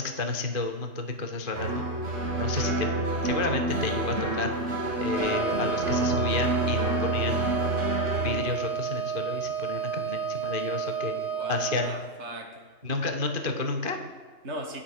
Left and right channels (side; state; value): left; late; 2.5 ms